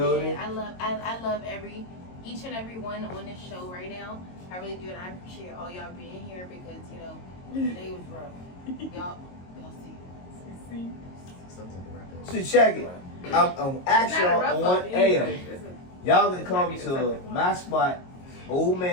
man. I love each and every one on this show right now. I really do, and I appreciate all y'all being here because today was rough. Y'all see. Something to wrap up. So check it. I'm actually on air. Y'all gonna come to my spot, Old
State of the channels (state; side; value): late; right; 22 ms